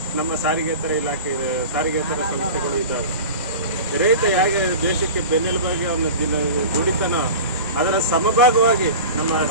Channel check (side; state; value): both; inverted; correlation -0.34